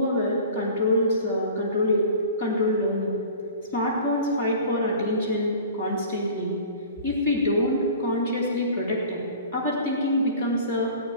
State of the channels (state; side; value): inverted; both; correlation -0.41